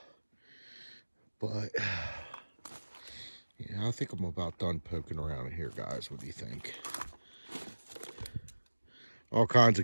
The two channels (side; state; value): both; inverted; correlation -1.00